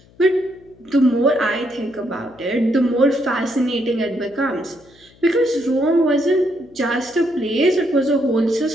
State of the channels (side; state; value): left; noise; hum, 28 dB below the sound